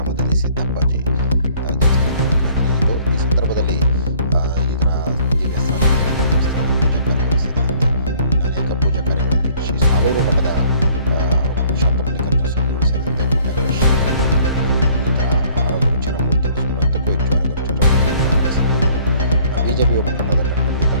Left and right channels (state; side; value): inverted; both; correlation -0.57